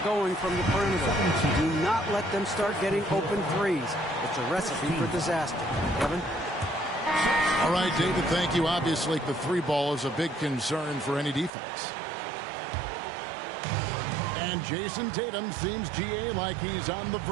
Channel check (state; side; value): drops out; left; at 11.5 s